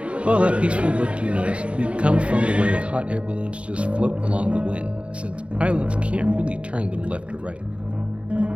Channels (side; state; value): left; late; 0.061 ms